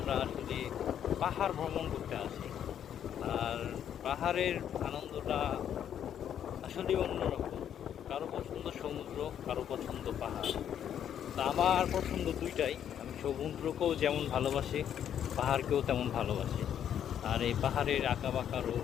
আসলে পাহাড় ভ্রমণ করতে আসি। আর পাহাড়ের আনন্দটা আসলে অন্যরকম। কারো পছন্দ সমুদ্র, কারো পছন্দ পাহাড়। তা আমার পছন্দ দুইটাই। আমি সমুদ্রকেও যেমন ভালোবাসি, পাহাড়কেও তেমন ভালোবাসি। আর এই পাহাড়ের আঁকাবাঁকারও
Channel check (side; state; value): right; quieter; 9.5 dB